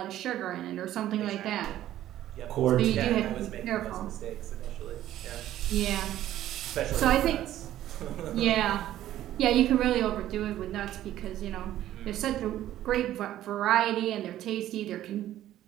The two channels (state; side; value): quieter; left; 13.0 dB